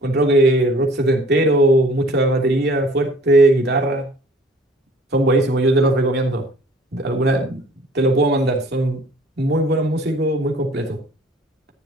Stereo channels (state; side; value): normal; both; correlation 0.52